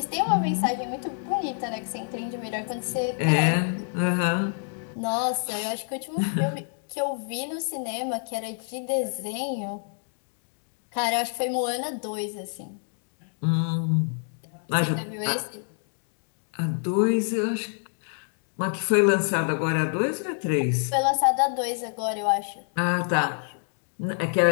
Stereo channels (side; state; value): right; silent; 60 dB below the other